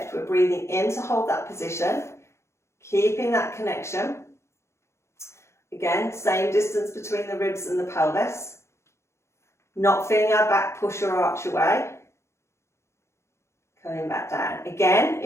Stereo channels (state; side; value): late; right; 0.13 ms